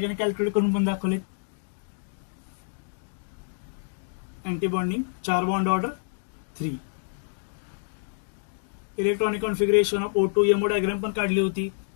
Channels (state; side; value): silent; right; digital silence